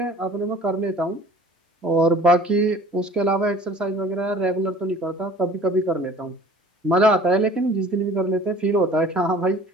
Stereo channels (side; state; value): both; normal; correlation 0.48